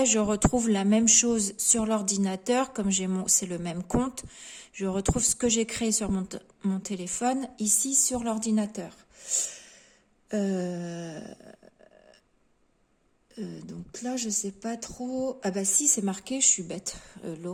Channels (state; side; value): identical; both; correlation 1.00